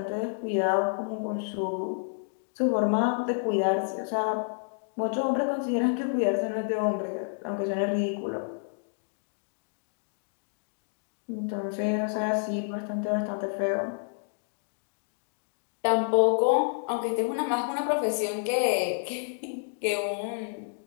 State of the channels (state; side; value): silent; right; digital silence